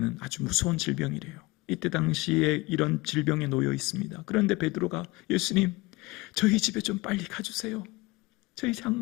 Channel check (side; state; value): right; quieter; 22.4 dB